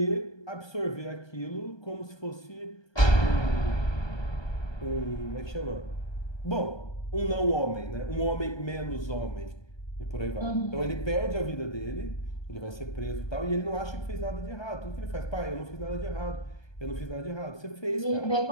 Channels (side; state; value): right; late; 1.2 ms